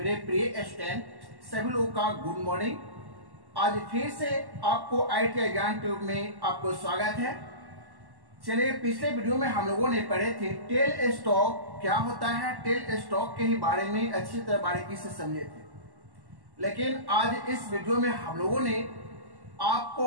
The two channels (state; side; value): late; left; 1.1 ms